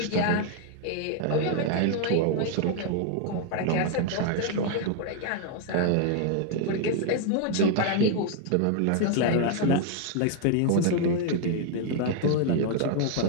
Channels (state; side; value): different; both; correlation 0.00